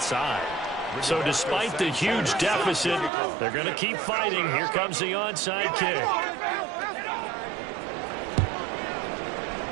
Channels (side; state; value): left; drops out; at 3.1 s